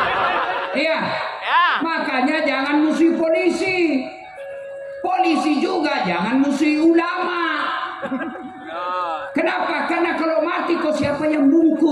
Iya. Makanya jangan musuhi polisi. Polisi juga jangan musuhi ulama. Kenapa? Karena kalau mati kok siapa yang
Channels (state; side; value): identical; both; correlation 1.00